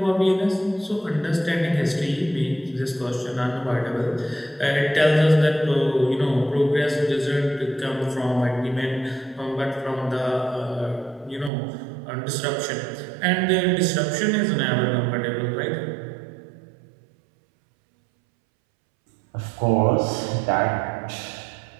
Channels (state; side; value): drops out; left; at 11.5 s